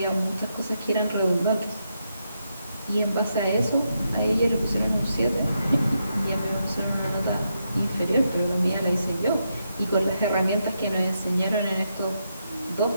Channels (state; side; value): inverted; both; correlation -0.82